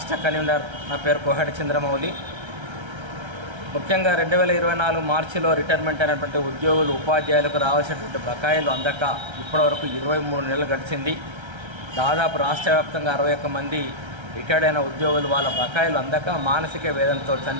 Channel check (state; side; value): late; left; 1.3 ms